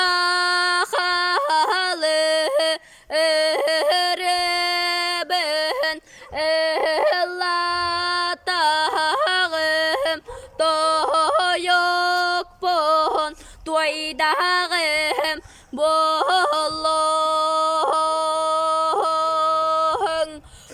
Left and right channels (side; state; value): both; identical; correlation 1.00